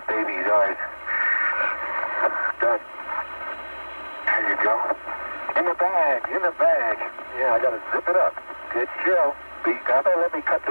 baby's ours. Done. There you go. In the bag. Yeah, I gotta zip it up. Good show. How about let me cut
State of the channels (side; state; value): both; inverted; correlation -1.00